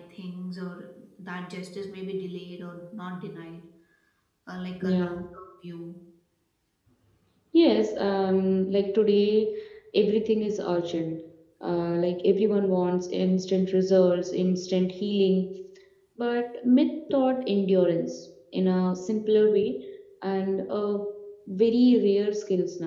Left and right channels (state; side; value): identical; both; correlation 1.00